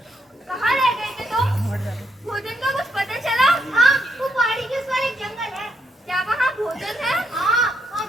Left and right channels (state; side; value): normal; both; correlation 0.77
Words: कहाँ रह गए थे तुम? भोजन का कुछ पता चला? हाँ, वो पहाड़ी के उस पार एक जंगल है। क्या वहाँ भोजन है? हाँ, वहाँ